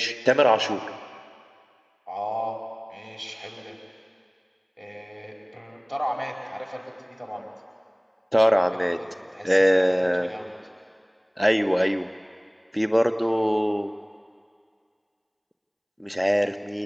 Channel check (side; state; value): both; identical; correlation 1.00